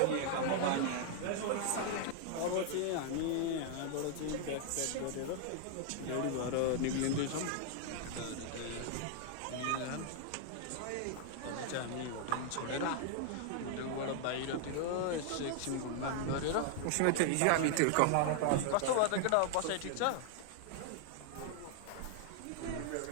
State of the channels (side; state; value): both; different; correlation 0.00